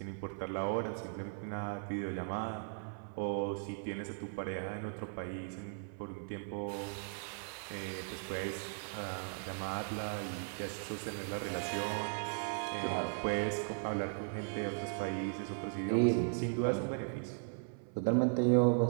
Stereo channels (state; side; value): silent; left; 53 dB below the other